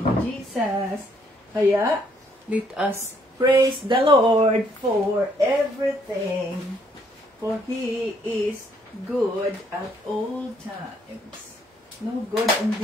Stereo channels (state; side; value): normal; both; correlation 0.68